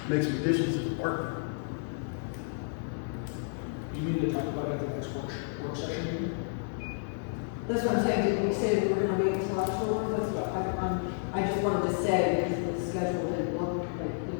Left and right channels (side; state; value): right; silent; 57 dB below the other